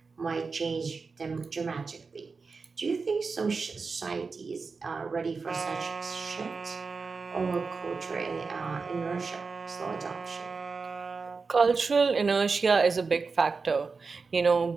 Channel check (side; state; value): left; quieter; 4.6 dB